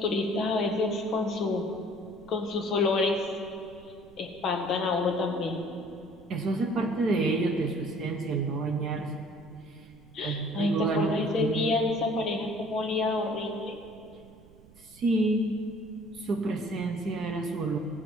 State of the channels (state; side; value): noise; right; rumble, 24 dB below the sound